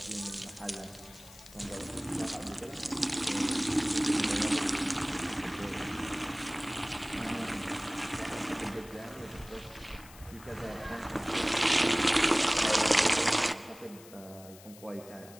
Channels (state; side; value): noise; left; hiss, 20 dB below the sound